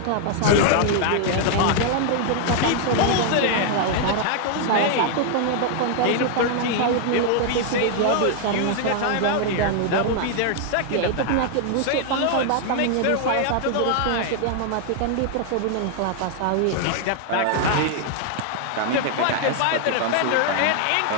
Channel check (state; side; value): different; both; correlation 0.00